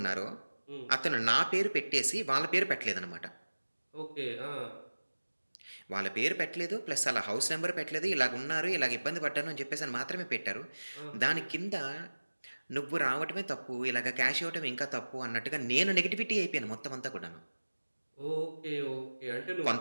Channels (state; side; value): inverted; both; correlation -1.00